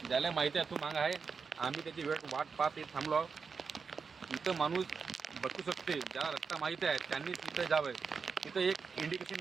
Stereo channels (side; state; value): left; quieter; 5.4 dB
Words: ज्याला माहिती आहे तो माग आहे. आम्ही त्याची वाट पाहत थांबलो. इथं माणूस बसू शकते. ज्याला रस्ता माहिती आहे त्यांनी तिथं जावं. तिथं एक